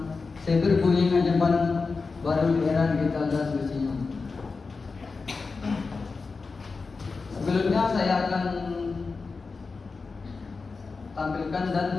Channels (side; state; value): right; quieter; 4.4 dB